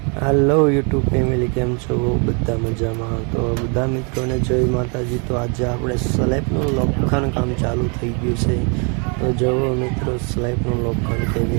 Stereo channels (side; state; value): left; quieter; 35.9 dB